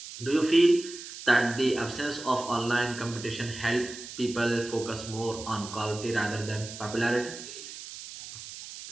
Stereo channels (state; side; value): noise; right; hiss, 12 dB below the sound